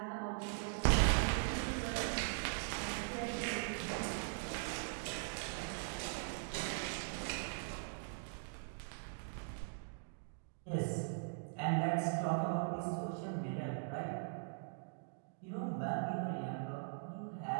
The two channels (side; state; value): left; silent; digital silence